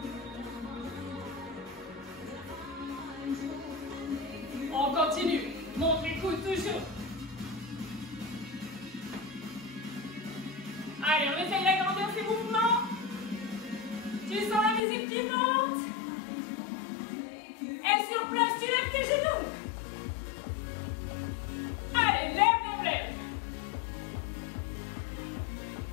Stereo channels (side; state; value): right; drops out; at 14.8 s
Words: On continue. Montre les coudes toujours. Allez, on essaye d'agrandir ces mouvements. Tu sens la musique qui monte. Et sur place, tu lèves tes genoux. Allez, lève, lève, lève.